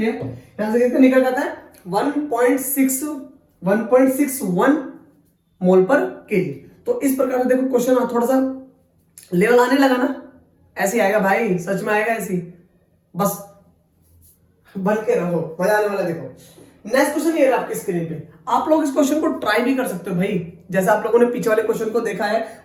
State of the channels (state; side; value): identical; both; correlation 1.00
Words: यहां से कितना निकल जाता है? 1.61 मोल पर केजी। तो इस प्रकार से देखो क्वेश्चन थोड़ा सा लेवल आने लगा ना, ऐसे आएगा भाई, सच में आएगा ऐसे, बस बन के रहो, मजा आने वाला। देखो नेक्स्ट क्वेश्चन ये है आपकी स्क्रीन पे। आप लोग इस क्वेश्चन को ट्राई भी कर सकते हो भाई, जैसा आप लोगों ने पीछे वाले क्वेश्चन को देखा है